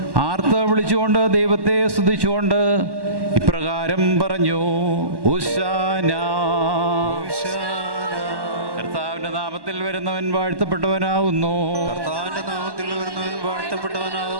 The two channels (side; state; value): left; late; 1.1 ms